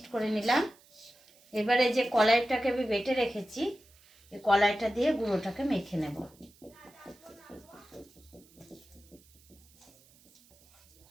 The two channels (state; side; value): noise; right; hiss, 28 dB below the sound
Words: করে নিলাম। এবারে যে কলাইটাকে আমি বেটে রেখেছি, এই কলাইটা দিয়ে গুঁড়োটাকে মেখে নেব।